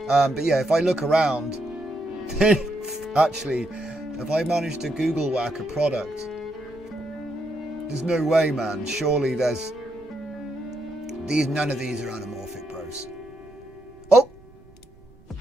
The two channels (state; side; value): noise; right; rumble, 26 dB below the sound